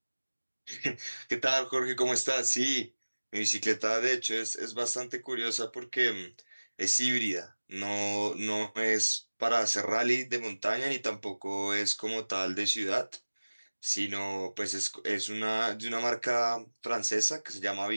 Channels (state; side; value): inverted; both; correlation -1.00